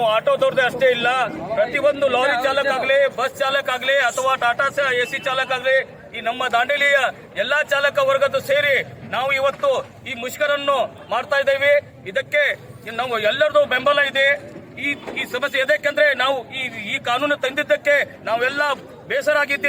ಆಟೋದವ್ರದ್ದೇ ಅಷ್ಟೇ ಇಲ್ಲ, ಪ್ರತಿಯೊಂದು ಲಾರಿ ಚಾಲಕ ಆಗ್ಲಿ, ಬಸ್ ಚಾಲಕ ಆಗ್ಲಿ, ಅಥವಾ ಟಾಟಾ ಎಸಿ ಚಾಲಕ ಆಗ್ಲಿ, ಈ ನಮ್ಮ ದಾಂಡೇಲಿಯ ಎಲ್ಲಾ ಚಾಲಕ ವರ್ಗದ ಸೇರಿ ನಾವು ಇವತ್ತು ಈ ಮುಷ್ಕರನ್ನು ಮಾಡ್ತಾ ಇದ್ದೇವೆ. ಇದಕ್ಕೆ ನಾವು ಎಲ್ಲರದು ಬೆಂಬಲ ಇದೆ. ಈ ಸಮಸ್ಯೆ ಎದಕ್ಕೆಂದ್ರೆ ನಾವು ಈ ಕಾನೂನು ತಂದಿದ್ದಕ್ಕೆ ನಾವೆಲ್ಲ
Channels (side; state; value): both; identical; correlation 1.00